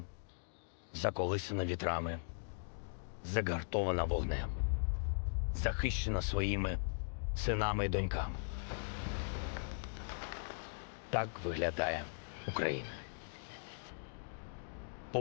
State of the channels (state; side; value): silent; right; digital silence